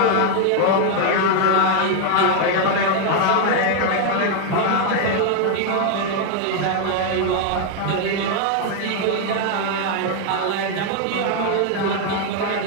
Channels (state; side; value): different; both; correlation 0.00